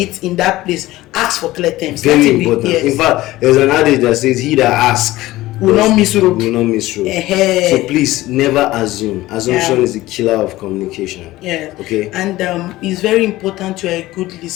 in that place, ask for clear terms. Very Let it be- important. yes. In fact, there's an adage that says, "He that asks Will not miss road." Will not miss road. So please never assume. Assumption is the killer of communication. Yeah. Okay. And it's very important you're a good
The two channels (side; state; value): right; quieter; 17.3 dB